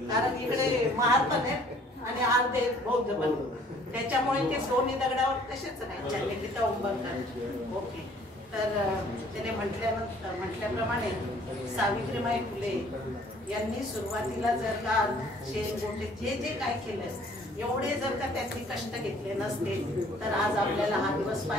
कारण इकडे महार पण आहे आणि अर्धे बौद्ध पण, त्याच्यामुळे ते दोन्ही दगडावर तसेच नाही चालले तिथं उंबरकर. ओके. तर त्याने म्हटल्याप्रमाणे सावित्रीबाई फुले यांनी सुरुवातीला जर का शेण गोटे जे काय केलं एवढे जर का त्यांनी कष्ट घेतले नसते तर आज आपल्याला हा दिवस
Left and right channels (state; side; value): normal; both; correlation 0.56